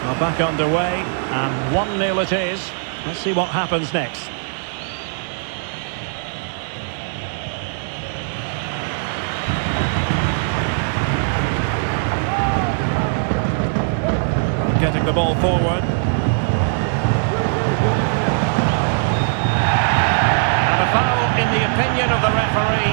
Well, back underway, and 1-0 it is. Let's see what happens next. Getting the ball forward. And a foul in the opinion of the referee.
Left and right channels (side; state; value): left; silent; 66 dB below the other